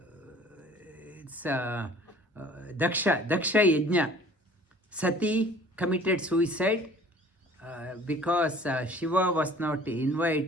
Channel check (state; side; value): normal; both; correlation 0.50